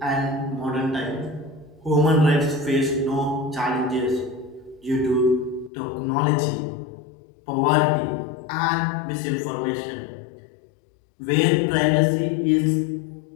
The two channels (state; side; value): drops out; right; at 5.7 s